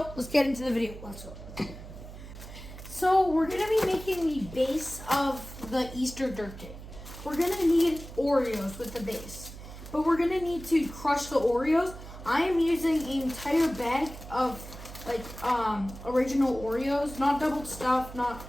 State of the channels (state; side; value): noise; right; hum, 14 dB below the sound